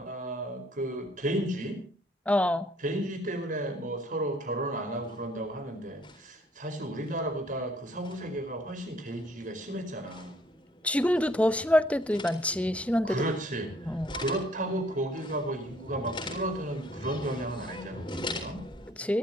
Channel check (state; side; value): normal; both; correlation 0.61